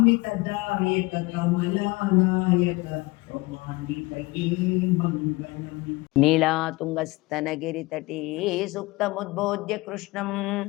कमलानायक रोमान्वितये मङ्गलम् नीलातुङ्गस्तनगिरितटे सुप्तमुद्बोध्य कृष्णं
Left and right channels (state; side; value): quieter; right; 22.6 dB